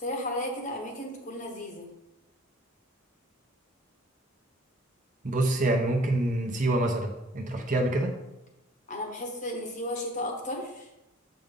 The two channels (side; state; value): both; normal; correlation 0.54